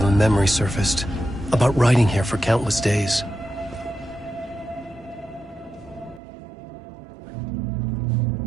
a memory surfaced, about writing here for countless days.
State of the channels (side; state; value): left; drops out; at 6.2 s